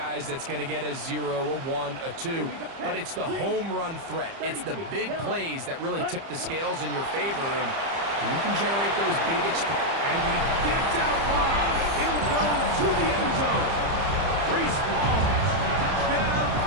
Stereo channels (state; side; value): late; left; 30 ms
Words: that's going to get a 0, a 1, a 2. But it's the home run threat. It's the big plays that really tip the scales in your favor. And you can generate those big and he gets out wide. He'll go to the end zone. Reese Falls, touchdown